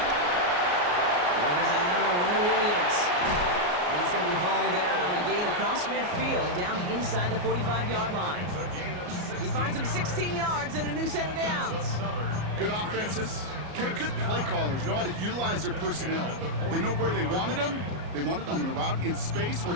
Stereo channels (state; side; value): late; left; 34 ms